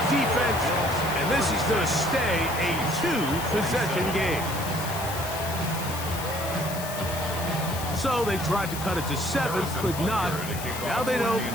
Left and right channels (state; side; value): noise; left; hiss, 9 dB below the sound